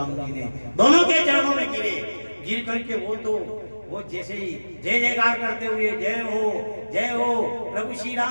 जी ने दोनों के चरणों में गिर करके वो जैसे ही जय जयकार करते हुए जय हो प्रभु श्री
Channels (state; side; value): inverted; both; correlation -1.00